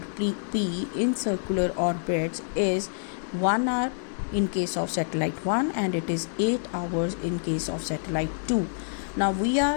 P in circular orbits, is 1 hour in case of satellite 1 and it is 8 hours in case of satellite 2. Now we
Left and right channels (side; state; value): right; silent; digital silence